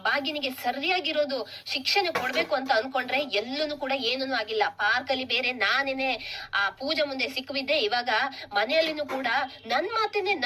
ಭಾಗ್ಯನಿಗೆ ಸರಿಯಾಗಿರೋದು ಶಿಕ್ಷಣೆ ಕೊಡ್ಬೇಕು ಅಂತ ಅನ್ಕೊಂಡ್ರೆ ಎಲ್ಲೂ ಕೂಡ ಏನೂ ಆಗಿಲ್ಲ. ಪಾರ್ಕ್ ಅಲ್ಲಿ ಬೇರೆ ನಾನೇನೆ ಆ ಪೂಜೆ ಮುಂದೆ ಸಿಕ್ಕಿದ್ದೆ, ಇವಾಗ ಮನೆಯಲ್ಲಿನೂ ಕೂಡ ನನ್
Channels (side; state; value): both; identical; correlation 1.00